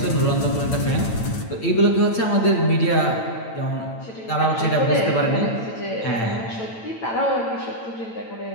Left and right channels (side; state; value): right; late; 8.9 ms